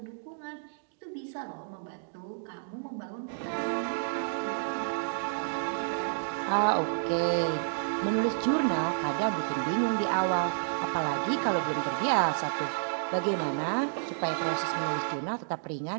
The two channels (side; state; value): left; silent; digital silence